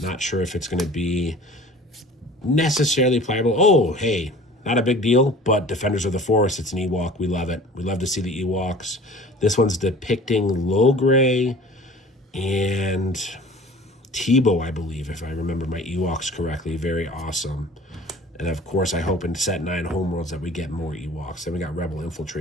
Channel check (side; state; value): both; normal; correlation 0.45